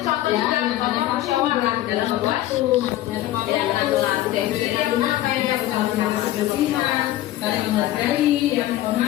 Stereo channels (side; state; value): right; quieter; 14.6 dB